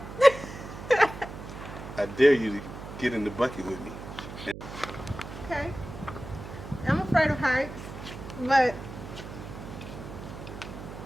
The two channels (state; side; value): noise; right; hum, 11 dB below the sound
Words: I dare you to get in the bucket with me. Okay. I'm afraid of heights, but